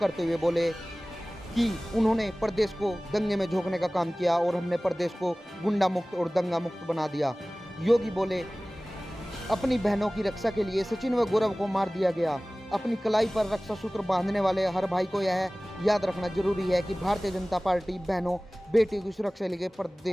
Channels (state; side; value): normal; both; correlation 0.98